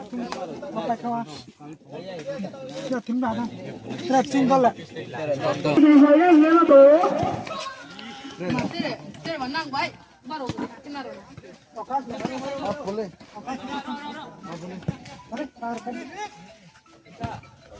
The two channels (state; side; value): identical; both; correlation 1.00